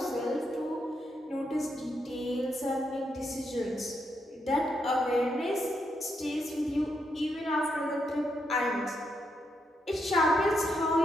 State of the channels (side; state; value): both; normal; correlation 0.80